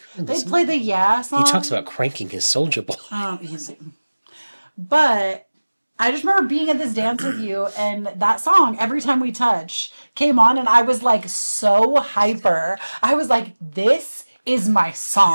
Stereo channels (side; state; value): both; inverted; correlation -1.00